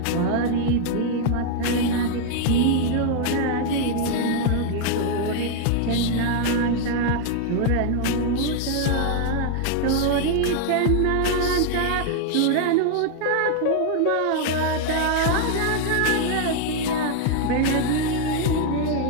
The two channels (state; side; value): different; both; correlation 0.00